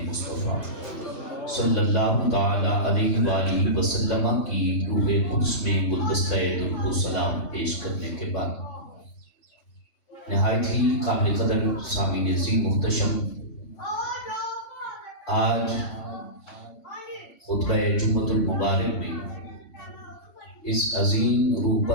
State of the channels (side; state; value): right; late; 3.5 ms